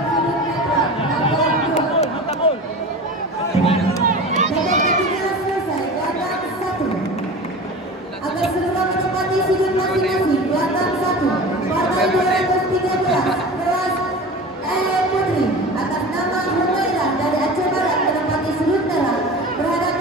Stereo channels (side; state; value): both; normal; correlation 0.34